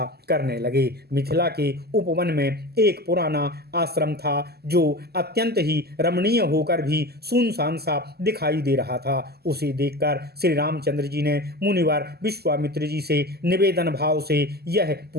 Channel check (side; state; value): left; late; 0.46 ms